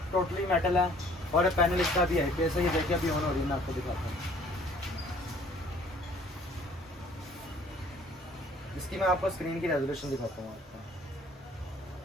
मेटल है। और पैनल इसका भी है। कैसे ये देखिए अभी ऑन हो रही है, मैं आपको दिखाता हूँ। इसकी मैं आपको स्क्रीन की रेजोल्यूशन दिखाता हूँ आपको।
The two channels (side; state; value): both; normal; correlation 0.57